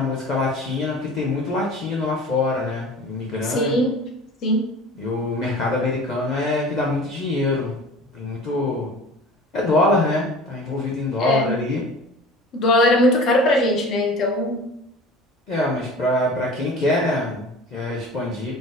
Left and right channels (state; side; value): normal; both; correlation 0.41